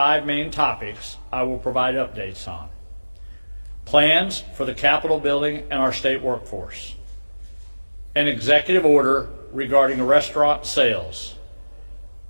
main topics I will provide updates on. Plans for the Capitol building and our state workforce. An executive order regarding restaurant sales.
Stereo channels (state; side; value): inverted; both; correlation -1.00